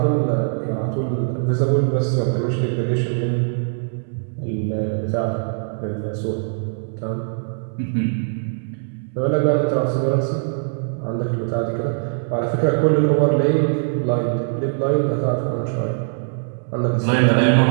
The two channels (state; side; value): silent; left; 65 dB below the other